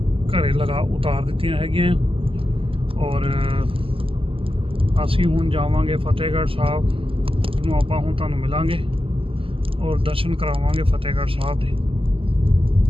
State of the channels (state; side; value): late; left; 0.26 ms